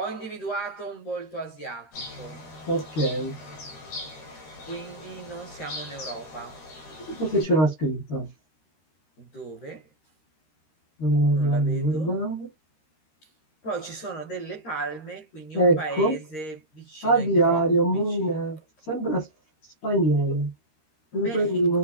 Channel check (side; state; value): right; late; 13 ms